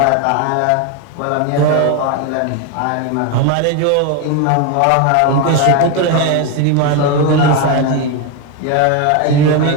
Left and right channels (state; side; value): different; both; correlation 0.02